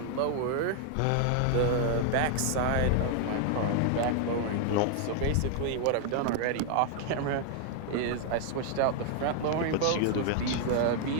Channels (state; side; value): different; both; correlation 0.00